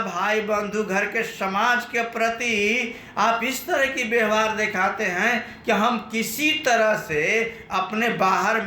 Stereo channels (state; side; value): identical; both; correlation 1.00